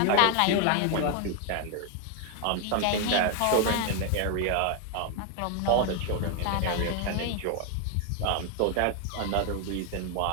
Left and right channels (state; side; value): different; both; correlation 0.00